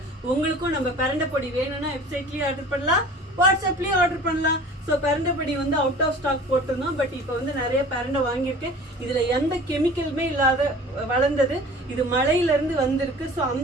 உங்களுக்கும் நம்ம பரண்டை பொடி வேணும்னா வெப்சைட்லயே ஆர்டர் பண்ணலாம், வாட்ஸ்அப்லயே ஆர்டர் பண்ணலாம். ஸோ பரண்டை பொடி வந்து அவுட் ஆஃப் ஸ்டாக் போட்டிருந்தோம். பட் இப்போ வந்து நிறைய பரண்டை வாங்கியிருக்கேன். இதில் எந்த கெமிக்கலுமே இல்லாத வளர்ந்தது. இது மலையிலேருந்து வந்திருக்கு. ஸோ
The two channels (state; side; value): normal; both; correlation 0.43